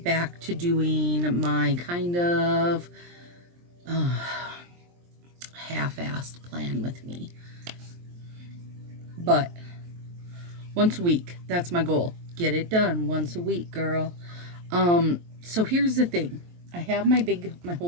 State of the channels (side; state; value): left; late; 23 ms